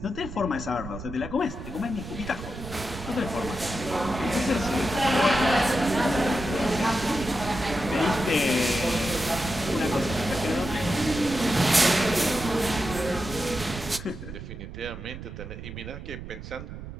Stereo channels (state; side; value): noise; right; rumble, 11 dB below the sound